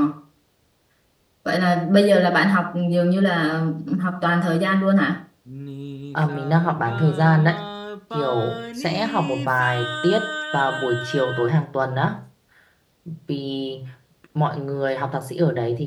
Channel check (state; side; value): identical; both; correlation 1.00